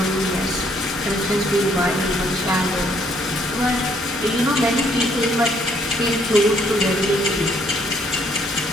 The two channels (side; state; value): both; normal; correlation 0.67